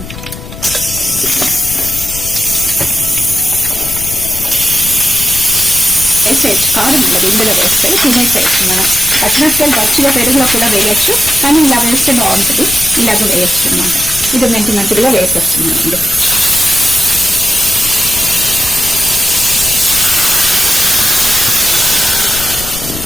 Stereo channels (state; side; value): noise; left; rumble, 12 dB below the sound